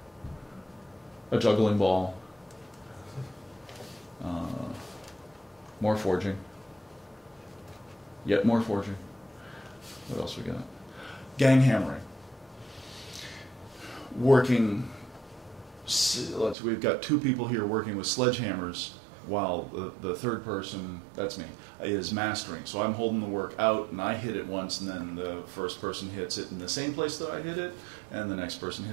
A juggling ball. More forging. Yet more forging. What else we got? Gang hammering. We've got 2 people here working with sledgehammers while the third person, that's me, is mastering. So I'm holding the work out and I hit it once and then the first person hits it in the same place that I hit it and the next person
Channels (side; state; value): left; drops out; at 16.6 s